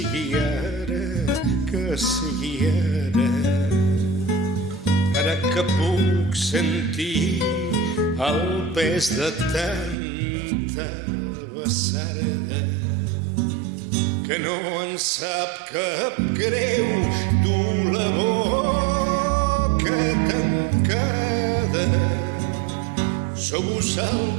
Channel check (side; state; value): left; drops out; at 10.0 s